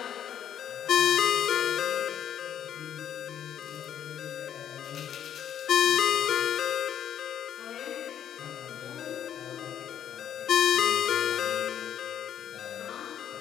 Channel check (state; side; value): quieter; right; 9.6 dB